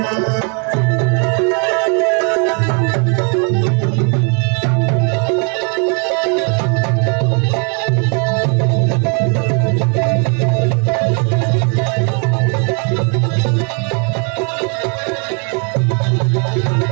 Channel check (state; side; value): quieter; left; 37.0 dB